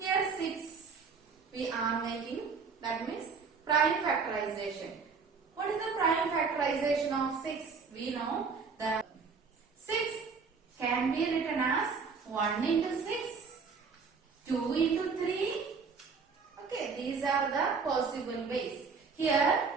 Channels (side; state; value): left; quieter; 5.2 dB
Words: 6 we are making, that means prime factorization. What is the prime factorization of 6? We know that 6 can be written as 1 into 6, 2 into 3. Okay, these are the possible ways. Here,